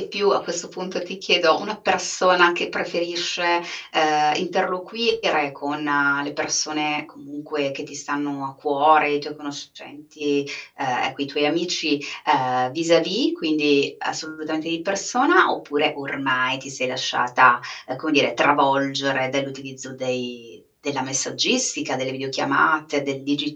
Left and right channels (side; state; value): both; identical; correlation 1.00